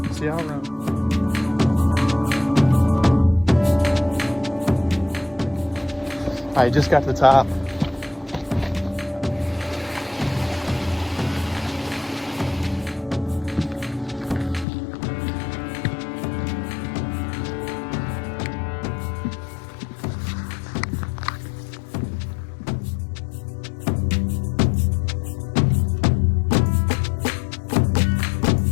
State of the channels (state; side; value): drops out; right; at 14.7 s